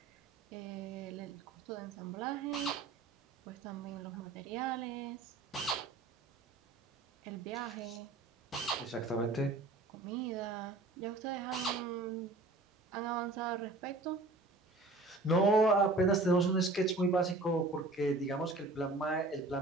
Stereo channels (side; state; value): left; quieter; 3.2 dB